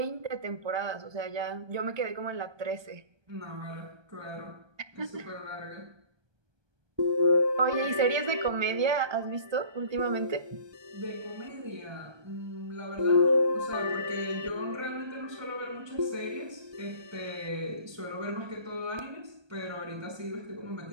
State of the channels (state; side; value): late; left; 1.2 ms